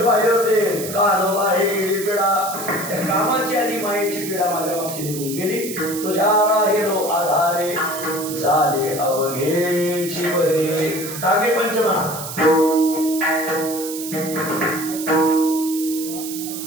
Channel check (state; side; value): noise; right; hiss, 9 dB below the sound